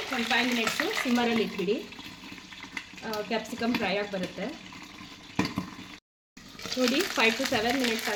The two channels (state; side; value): identical; both; correlation 1.00